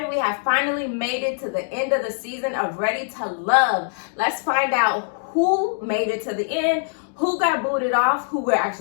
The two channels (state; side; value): silent; right; digital silence